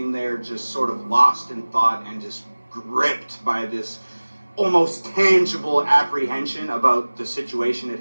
there just sort of lost in thought and just gripped by this almost tangible apprehension about the situation at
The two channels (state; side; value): inverted; both; correlation -1.00